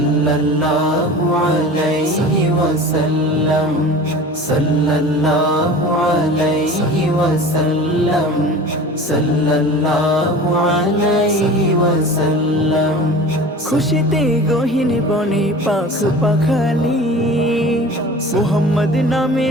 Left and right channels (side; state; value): both; normal; correlation 0.38